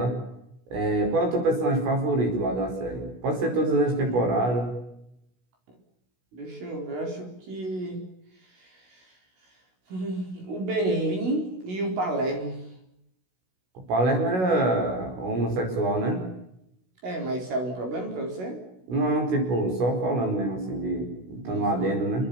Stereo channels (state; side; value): late; left; 16 ms